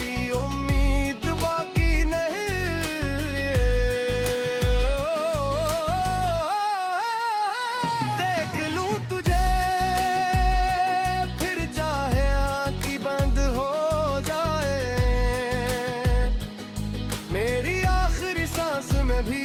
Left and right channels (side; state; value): both; identical; correlation 1.00